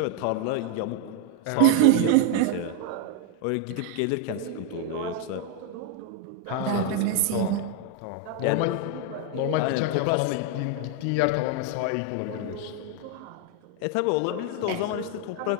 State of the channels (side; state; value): both; different; correlation 0.00